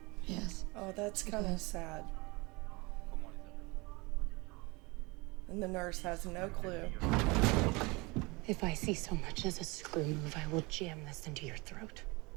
Yes. Oh, that's kind of sad. And the nurse has no clue. If I see so much as a screw move, I will jam this into your throat.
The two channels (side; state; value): left; quieter; 25.5 dB